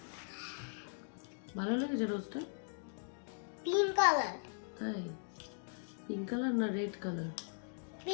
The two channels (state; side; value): silent; right; digital silence